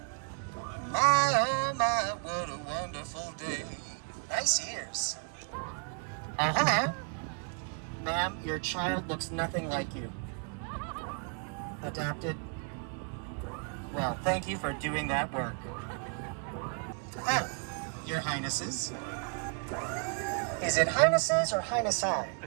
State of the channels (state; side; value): quieter; left; 36.1 dB